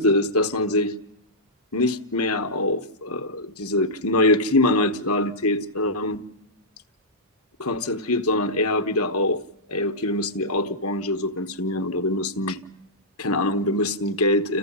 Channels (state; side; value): normal; both; correlation -0.13